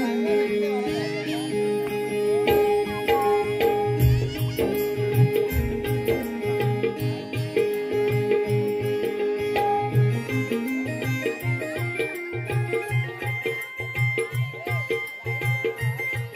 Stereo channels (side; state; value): both; identical; correlation 1.00